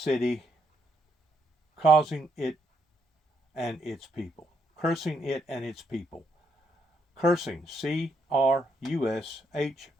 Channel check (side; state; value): both; normal; correlation 0.75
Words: causing it and its people. Cursing it and its people. Cursing, C-R-U-S-H-I-N-G.